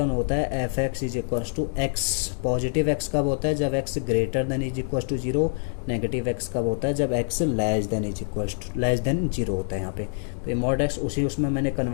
होता है f x is equal to x, positive x कब होता है, जब x greater than is equal to 0, negative x कब होता है, जब x less than is equal to less than 0 होता है यहाँ पे। तो ये मॉड एक्स उसमें मैंने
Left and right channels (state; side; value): silent; right; 61 dB below the other